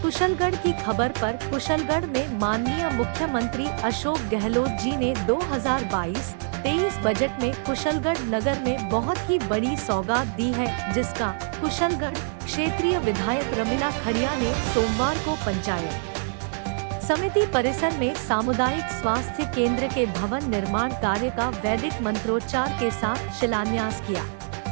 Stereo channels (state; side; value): silent; left; digital silence